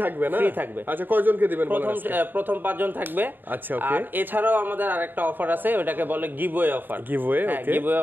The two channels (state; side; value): late; left; 0.092 ms